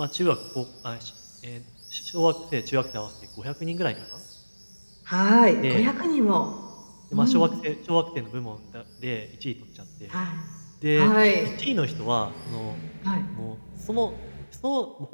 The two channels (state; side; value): inverted; both; correlation -1.00